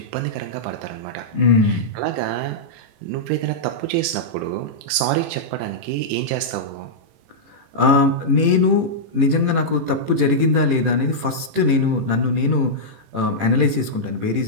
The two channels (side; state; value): left; late; 18 ms